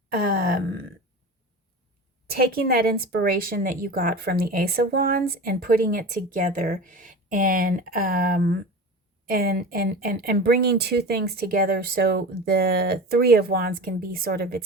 taking that inspiration that you got from the Ace of Wands and putting it together, and bringing two things together so the Three of Wands can be sort of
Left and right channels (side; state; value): both; normal; correlation 0.32